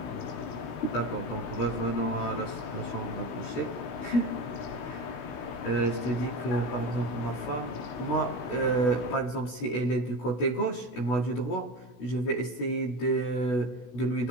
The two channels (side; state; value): right; late; 16 ms